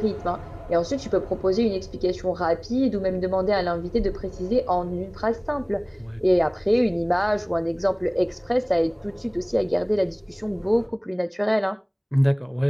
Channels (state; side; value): identical; both; correlation 1.00